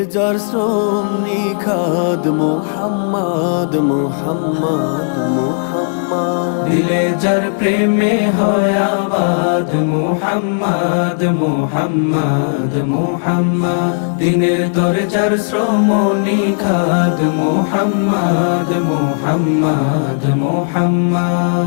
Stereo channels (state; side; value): silent; right; digital silence